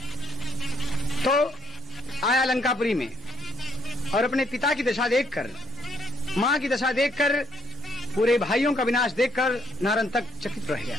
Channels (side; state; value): both; normal; correlation 0.70